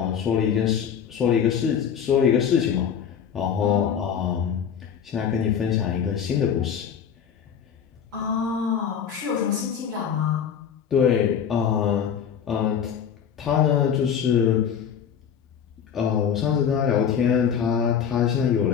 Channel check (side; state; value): right; quieter; 7.9 dB